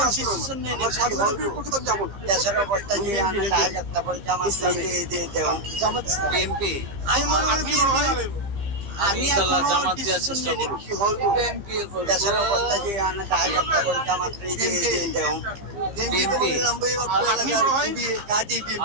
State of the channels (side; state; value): left; late; 15 ms